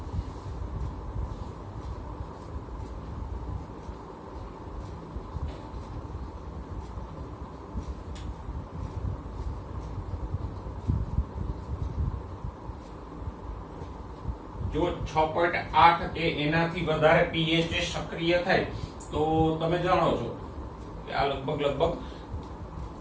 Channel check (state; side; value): identical; both; correlation 1.00